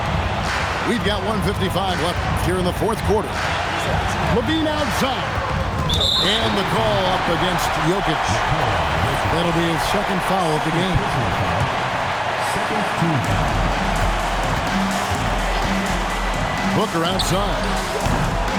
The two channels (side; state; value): both; identical; correlation 1.00